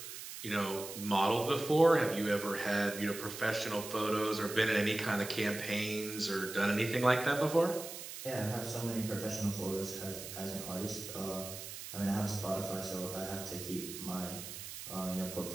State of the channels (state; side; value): noise; right; hiss, 10 dB below the sound